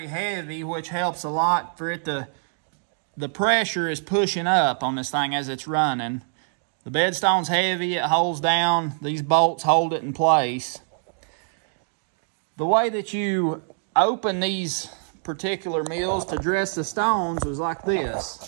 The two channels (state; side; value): silent; left; digital silence